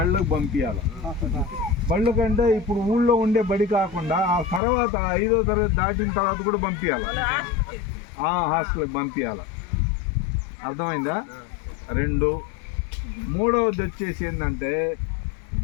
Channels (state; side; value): drops out; right; at 4.6 s